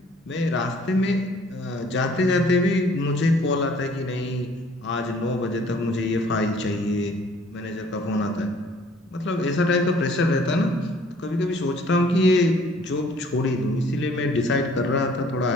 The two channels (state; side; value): normal; both; correlation 0.57